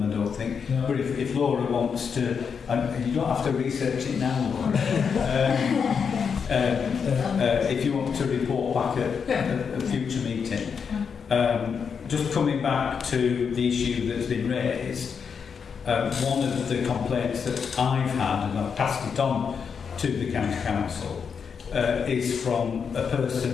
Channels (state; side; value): quieter; right; 6.4 dB